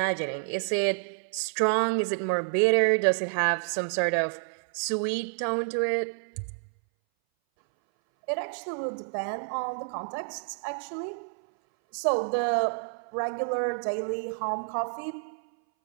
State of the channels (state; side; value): silent; left; 59 dB below the other